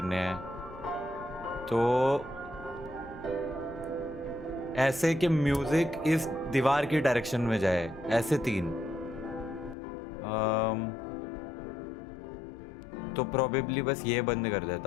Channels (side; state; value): right; drops out; at 9.8 s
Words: हैं। तो ऐसे कि म्यूजिक इस दीवार की डायरेक्शन में जाए, ऐसे 3। तो प्रोबेबली बस ये बंद कर